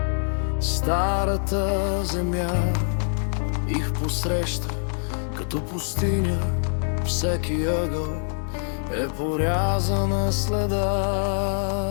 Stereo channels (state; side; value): silent; right; digital silence